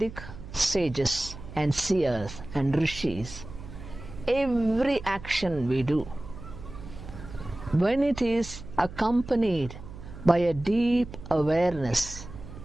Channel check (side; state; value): right; noise; hum, 13 dB below the sound